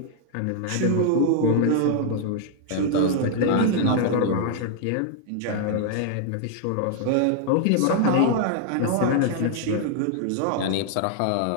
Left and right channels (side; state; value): both; different; correlation 0.00